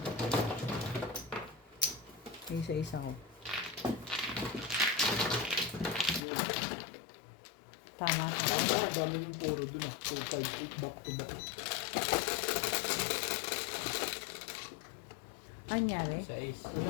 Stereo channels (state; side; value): drops out; right; at 6.2 s